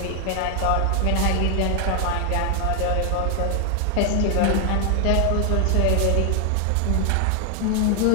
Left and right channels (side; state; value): both; different; correlation 0.00